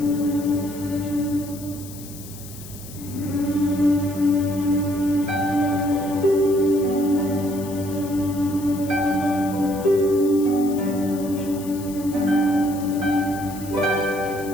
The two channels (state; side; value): noise; left; hiss, 16 dB below the sound